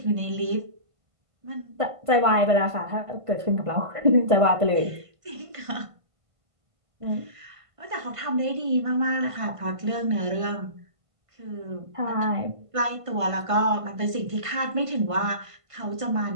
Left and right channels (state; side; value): late; left; 1.5 ms